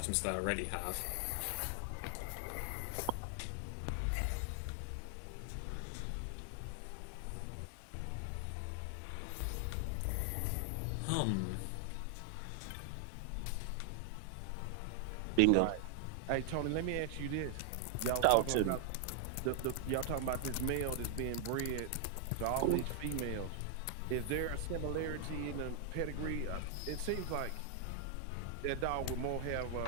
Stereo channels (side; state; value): both; different; correlation 0.00